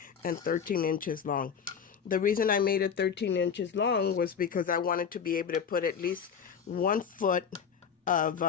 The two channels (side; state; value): right; quieter; 7.0 dB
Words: and 13 inches long. The reason I made it 13 inches long was because I wanted to be able to put at least 1 foot of